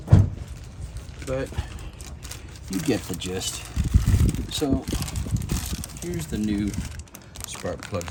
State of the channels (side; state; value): both; identical; correlation 1.00